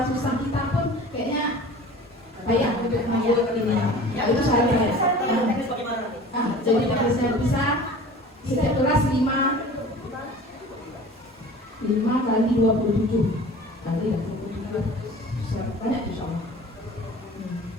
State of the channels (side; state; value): both; normal; correlation 0.42